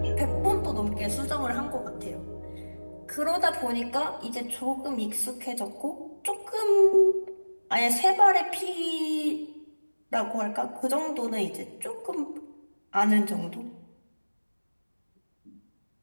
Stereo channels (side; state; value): both; inverted; correlation -1.00